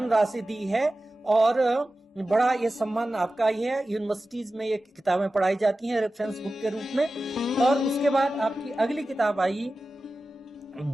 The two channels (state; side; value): normal; both; correlation 0.94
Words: दी है, और बड़ा ये सम्मान आपका ही है। यूनिवर्सिटीज में ये किताबें पढ़ाई जाती हैं रेफरेंस बुक के रूप में। और उसके बाद आपकी अगली किताब आई